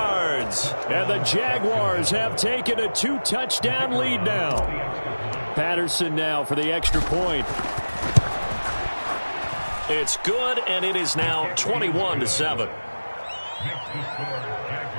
And the Jaguars have taken a 2-touchdown lead now. Patterson now for the extra point. It's good, and it is now 21-7.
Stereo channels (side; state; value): both; inverted; correlation -1.00